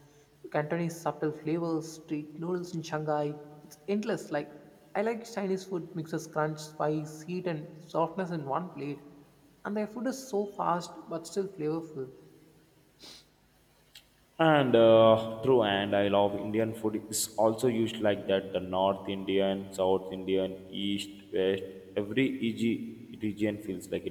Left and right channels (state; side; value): identical; both; correlation 1.00